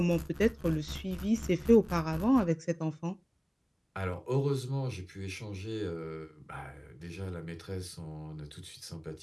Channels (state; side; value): identical; both; correlation 1.00